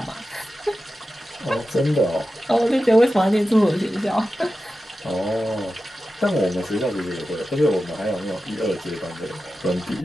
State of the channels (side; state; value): both; normal; correlation 0.93